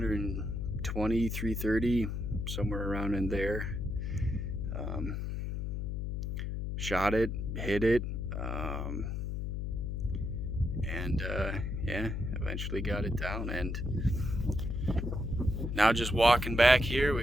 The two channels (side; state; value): left; noise; hum, 2 dB below the sound